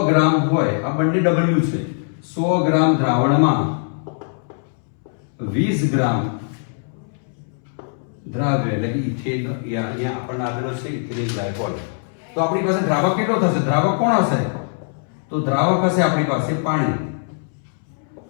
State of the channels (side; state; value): right; silent; 65 dB below the other